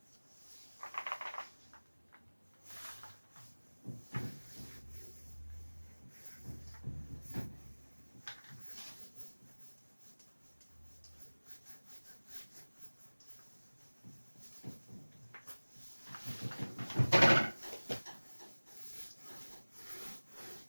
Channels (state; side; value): inverted; both; correlation -1.00